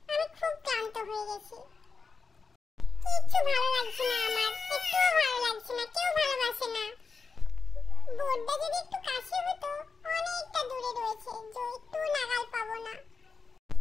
আমি খুব ক্লান্ত হয়ে গেছি। কিচ্ছু ভালো লাগছে না আমার, একটুও ভালো লাগছে না, কেউ ভালোবাসে না। বোর্ডটা যদি একটু কাছে হতো, অনেকটা দূরে রয়েছে, যে একটু নাগাল পাবো না।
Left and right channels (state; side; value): quieter; right; 5.0 dB